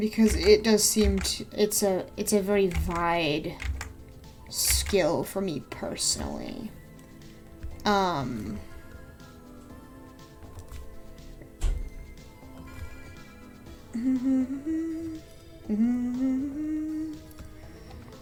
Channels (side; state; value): both; identical; correlation 1.00